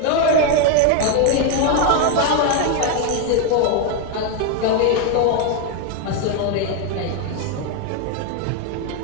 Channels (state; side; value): different; both; correlation 0.01